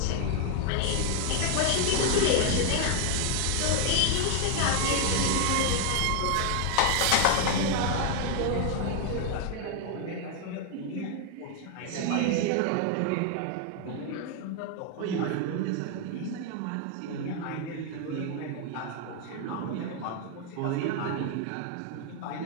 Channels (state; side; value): different; both; correlation 0.01